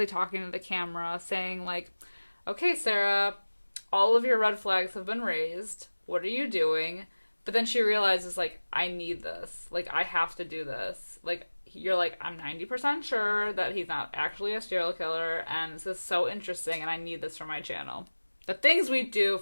talking to the camera, saying, like, okay, Sarah, all of your red flags have been raised. What are you doing? But then she realizes, like, I need this. Like, I have to do this. Like, you're like, I'm 90% sure that he's not actually a serial killer, and this is so interesting, and I need this for my channel. The things we do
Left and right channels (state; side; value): inverted; both; correlation -1.00